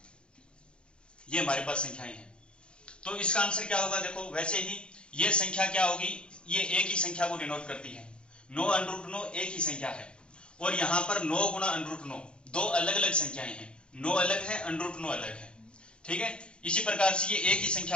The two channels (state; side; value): late; right; 0.055 ms